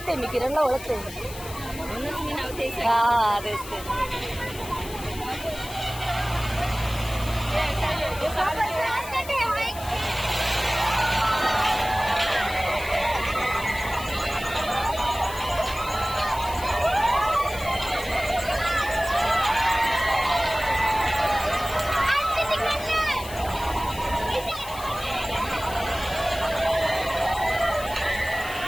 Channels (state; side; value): noise; left; hiss, 14 dB below the sound